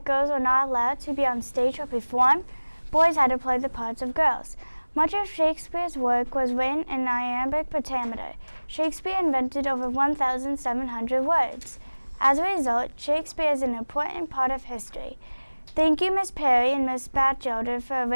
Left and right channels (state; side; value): inverted; both; correlation -1.00